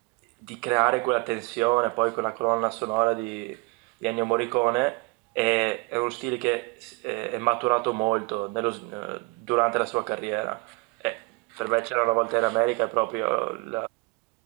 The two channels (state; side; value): quieter; left; 27.8 dB